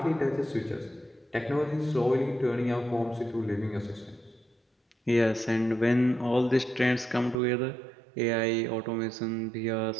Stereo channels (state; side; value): drops out; left; at 7.4 s